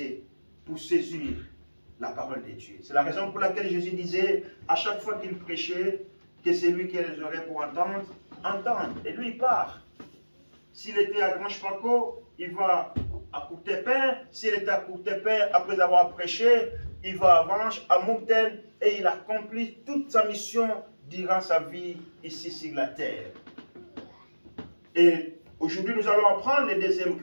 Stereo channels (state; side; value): inverted; both; correlation -1.00